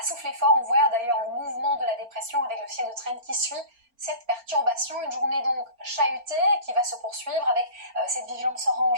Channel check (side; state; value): left; late; 4.3 ms